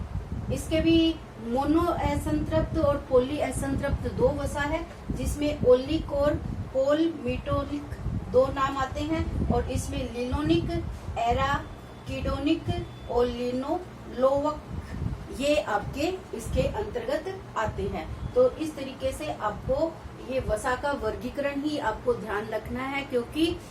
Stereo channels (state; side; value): identical; both; correlation 1.00